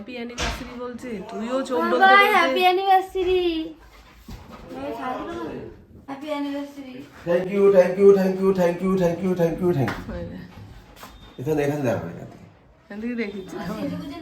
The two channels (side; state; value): both; identical; correlation 1.00